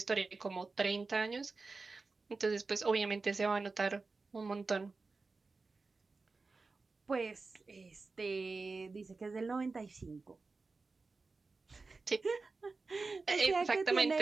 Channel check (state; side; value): quieter; left; 4.0 dB